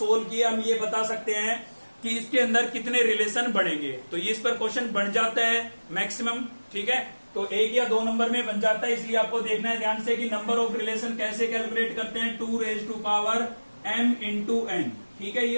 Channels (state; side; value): inverted; both; correlation -1.00